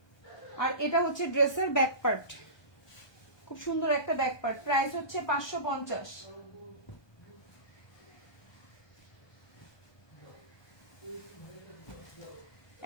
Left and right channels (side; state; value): right; late; 1.2 ms